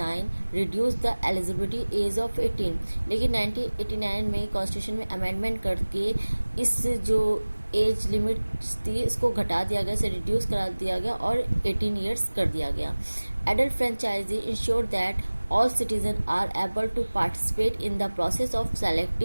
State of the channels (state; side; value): inverted; both; correlation -1.00